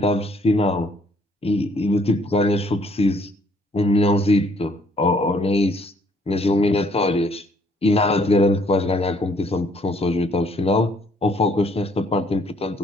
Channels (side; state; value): both; normal; correlation 0.64